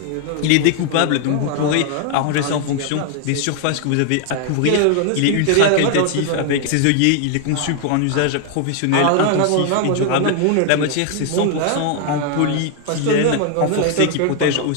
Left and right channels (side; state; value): both; different; correlation 0.00